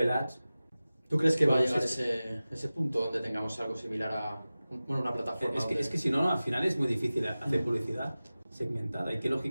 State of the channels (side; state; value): both; inverted; correlation -0.96